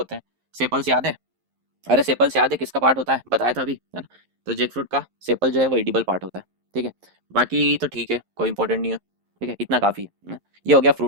हैं, सेपल्स याद है? अरे सेपल्स याद है किसका पार्ट होता है, बताया था अभी, है ना। तो जैक फ्रूट का सेपल जो है वो एडिबल पार्ट होता है, ठीक है। बाकी तो ठीक है, कोई इंपॉर्टेंट नहीं है, ठीक है, इतना काफ़ी है ना? ये हो गया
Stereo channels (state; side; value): late; left; 11 ms